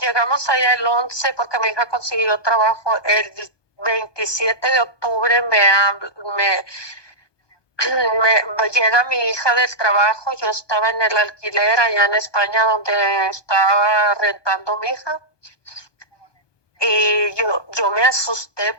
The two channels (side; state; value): right; late; 1.2 ms